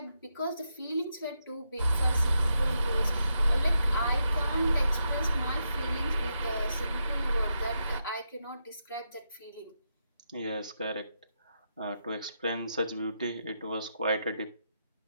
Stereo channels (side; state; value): both; inverted; correlation -0.84